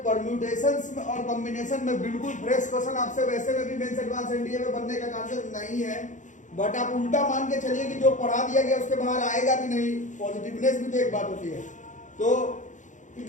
परम्यूटेशंस और कॉम्बिनेशन में बिल्कुल फ्रेश क्वेश्चन आपसे वैसे में भी मेंस एडवांस एनडीए में बनने का चांसेस नहीं है, बट आप उल्टा मान के चलिए कि जो पढ़ा दिया गया उसके बाहर आएगा भी नहीं, पॉजिटिवनेस भी तो एक बात होती है। तो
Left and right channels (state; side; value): late; right; 0.36 ms